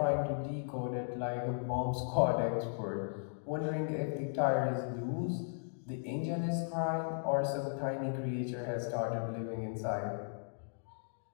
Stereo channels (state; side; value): silent; right; digital silence